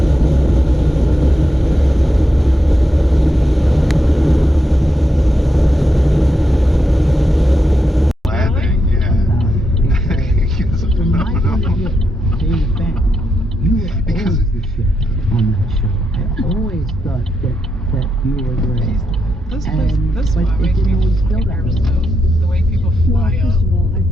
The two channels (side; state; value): both; normal; correlation 0.83